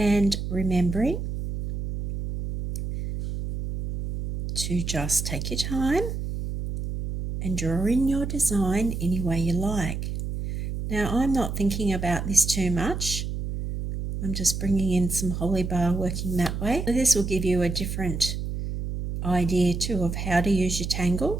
remembering to just take your time and draw in your design any way you like. Now I'm not thinking about this too much. I'm just bringing in some holly bar, working that way. This will give you a different idea too of how to use your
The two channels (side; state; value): right; noise; hum, 4 dB below the sound